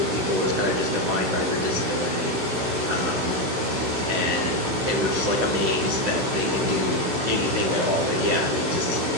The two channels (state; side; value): late; left; 16 ms